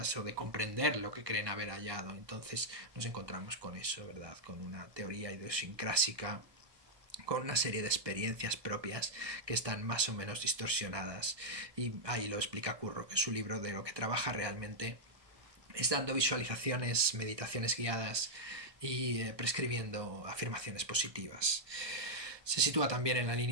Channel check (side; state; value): left; late; 1.2 ms